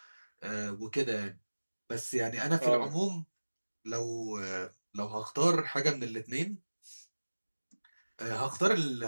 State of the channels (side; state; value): both; inverted; correlation -1.00